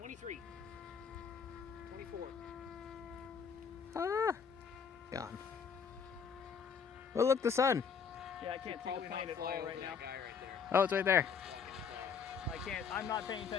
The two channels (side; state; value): right; quieter; 6.4 dB